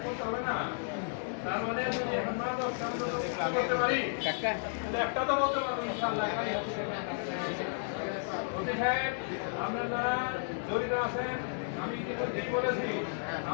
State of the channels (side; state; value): right; silent; digital silence